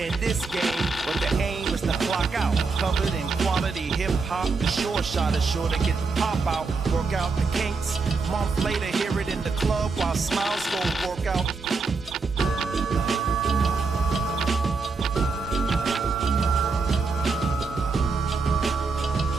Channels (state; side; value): quieter; left; 4.4 dB